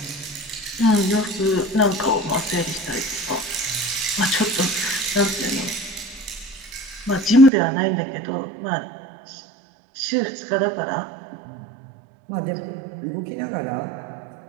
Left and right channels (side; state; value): left; drops out; at 7.5 s